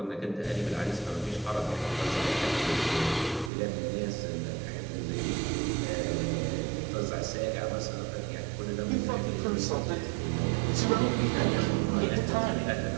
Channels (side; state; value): left; drops out; at 3.5 s